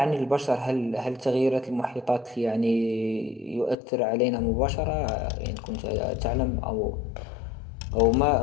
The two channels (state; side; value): drops out; right; at 3.8 s